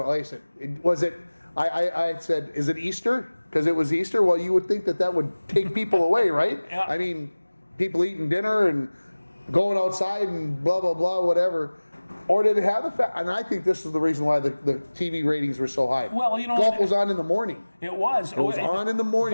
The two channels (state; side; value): inverted; both; correlation -1.00